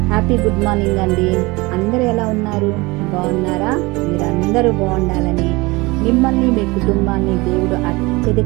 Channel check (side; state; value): left; quieter; 23.5 dB